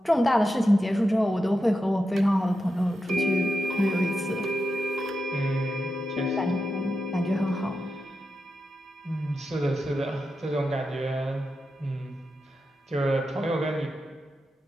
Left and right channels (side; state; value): both; normal; correlation 0.89